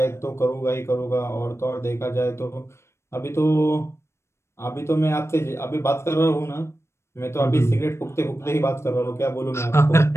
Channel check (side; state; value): right; late; 0.13 ms